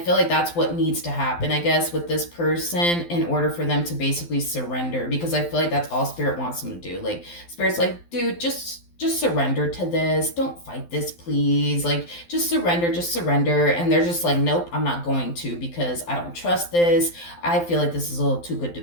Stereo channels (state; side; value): late; right; 12 ms